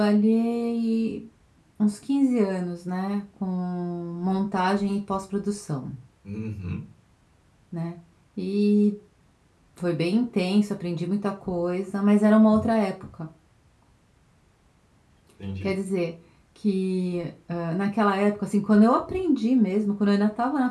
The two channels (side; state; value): both; identical; correlation 1.00